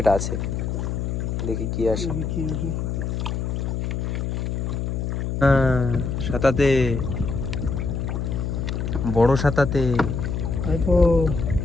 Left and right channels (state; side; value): noise; left; hum, 2 dB below the sound